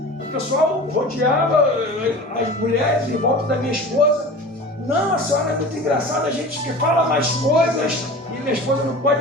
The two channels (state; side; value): normal; both; correlation 0.37